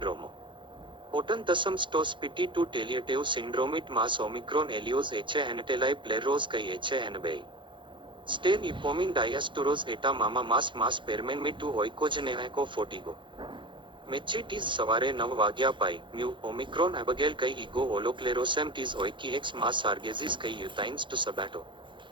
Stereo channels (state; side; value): late; left; 0.23 ms